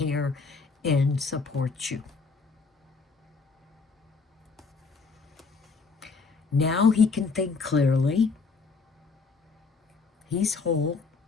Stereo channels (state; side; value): quieter; right; 4.6 dB